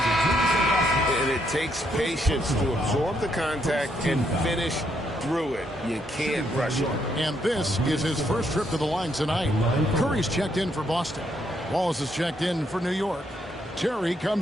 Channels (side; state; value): both; normal; correlation 0.75